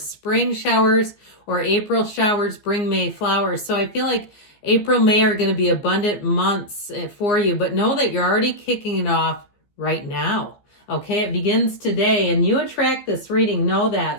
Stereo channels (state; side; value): late; right; 14 ms